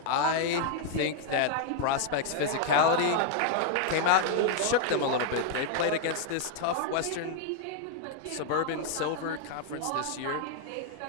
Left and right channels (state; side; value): different; both; correlation 0.00